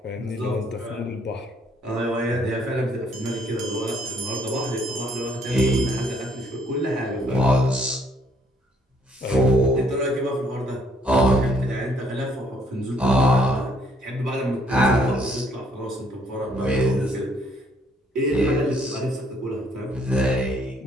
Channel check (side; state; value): both; normal; correlation 0.66